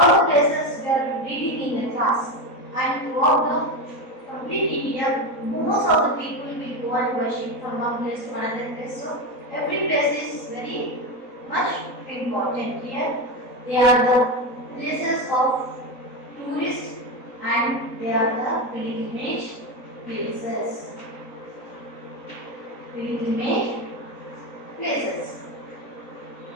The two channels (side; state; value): right; late; 3.9 ms